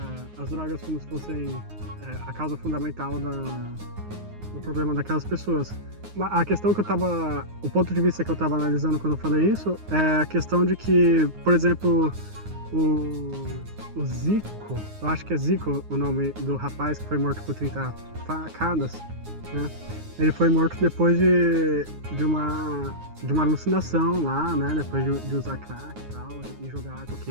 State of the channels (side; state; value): left; late; 9.5 ms